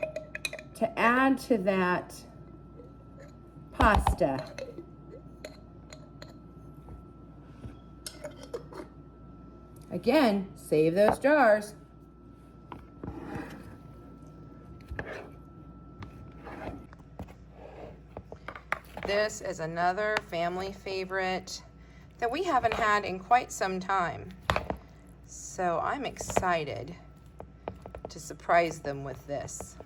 to add to that pasta. Again, save those jars. This is another family favorite that we haven't had in quite some time. So I'm excited to surprise them with this.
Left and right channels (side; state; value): both; identical; correlation 1.00